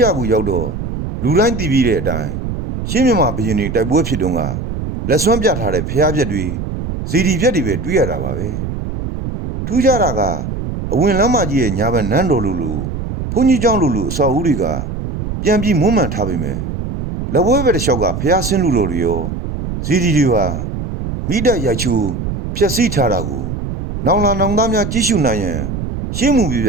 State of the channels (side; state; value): right; noise; rumble, 5 dB below the sound